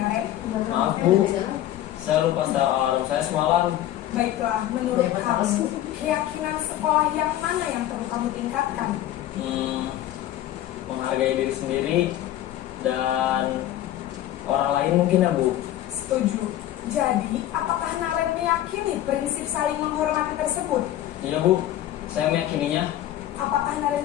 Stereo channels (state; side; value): quieter; right; 13.1 dB